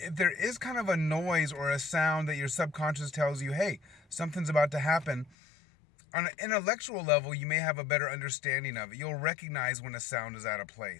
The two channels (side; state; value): right; drops out; at 5.3 s